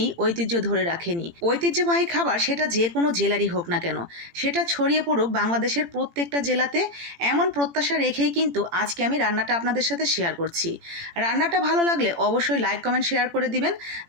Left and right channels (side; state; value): left; late; 18 ms